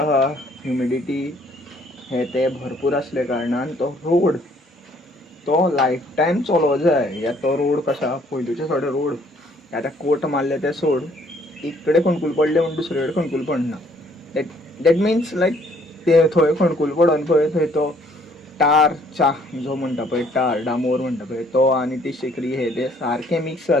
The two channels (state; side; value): normal; both; correlation 0.63